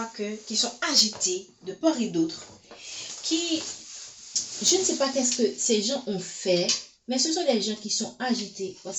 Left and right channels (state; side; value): identical; both; correlation 1.00